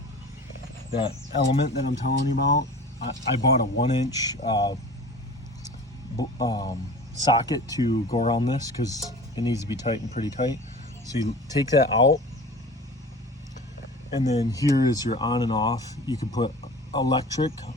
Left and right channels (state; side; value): normal; both; correlation 0.39